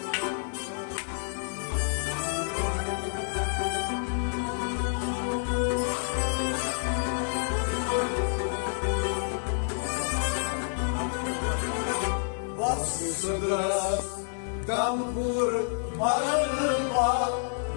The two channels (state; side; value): silent; right; 59 dB below the other